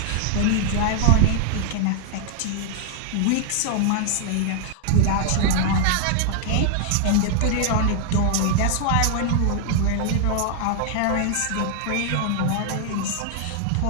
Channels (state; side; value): different; both; correlation 0.00